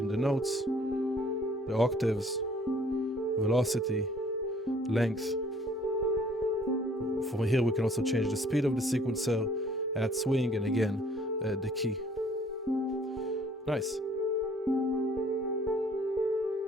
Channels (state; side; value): normal; both; correlation 0.58